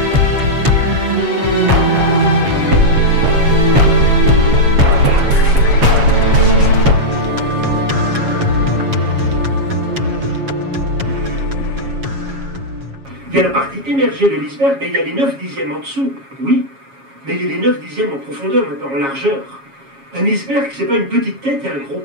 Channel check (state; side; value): late; left; 7.3 ms